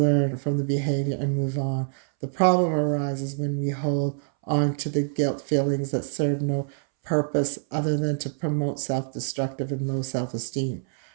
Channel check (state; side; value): silent; left; 61 dB below the other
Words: from the behavior and move on. The problem arises when we hold on to the guilt feelings that serve no purpose other than to promote self-destructive and low self-esteem.